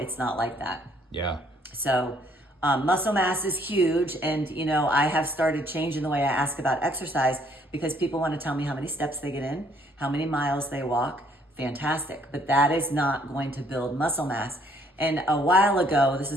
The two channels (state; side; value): normal; both; correlation 0.64